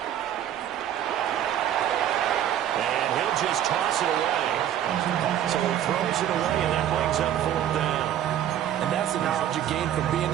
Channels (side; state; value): left; quieter; 10.9 dB